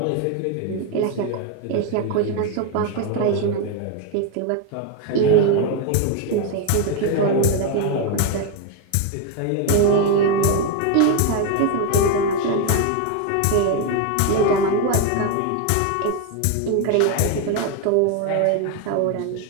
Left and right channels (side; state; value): both; different; correlation 0.02